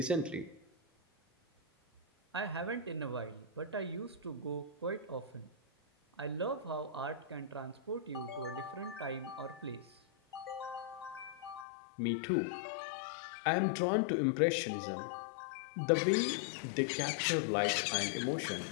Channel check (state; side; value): drops out; right; at 11.7 s